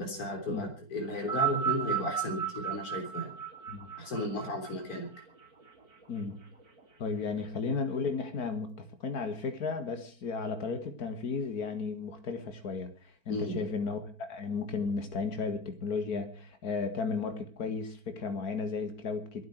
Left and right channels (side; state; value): right; late; 4.4 ms